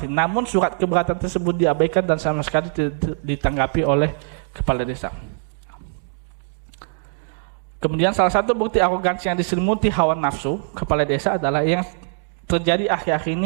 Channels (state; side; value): silent; left; digital silence